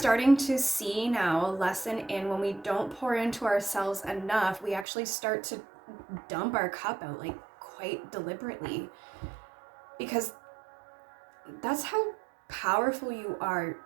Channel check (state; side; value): drops out; left; at 4.9 s